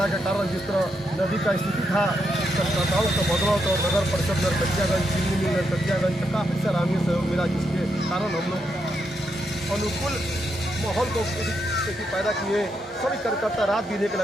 के कारण जिस तरह नदी का स्थिति था, संस्थाओं का बदलाव तो नगर परिषद नरकटियागंज, चिन्नी नरकटियागंज का काफ़ी सराहनीय सहयोग मिला, जिसके कारण हम लोग अनुकूल माहौल को पैदा किए। सभी कार्यकर्ता रात दिन एक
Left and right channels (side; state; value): both; normal; correlation 0.81